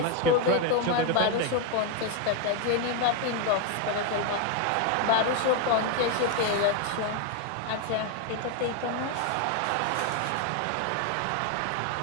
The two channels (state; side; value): different; both; correlation 0.01